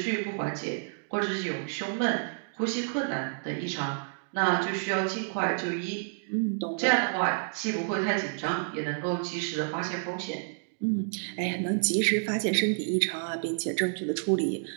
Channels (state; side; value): silent; left; digital silence